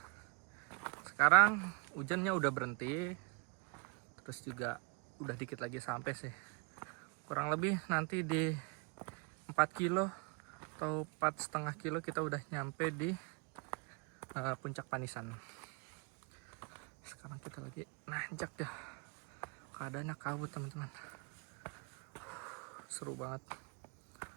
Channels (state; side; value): quieter; left; 32.5 dB